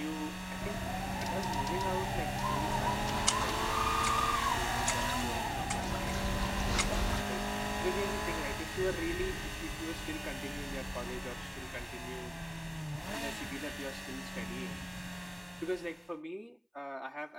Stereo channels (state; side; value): identical; both; correlation 1.00